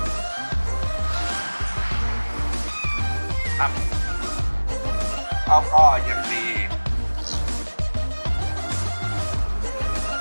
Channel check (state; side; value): inverted; both; correlation -1.00